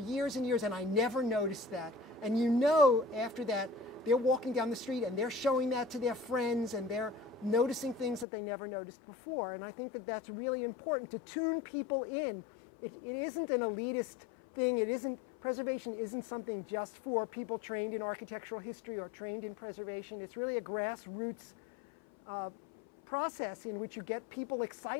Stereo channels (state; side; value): drops out; right; at 8.2 s